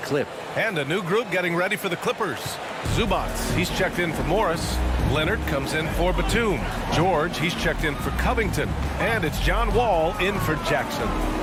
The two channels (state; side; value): identical; both; correlation 1.00